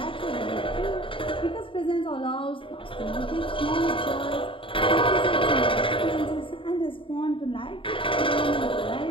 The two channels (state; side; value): late; right; 0.25 ms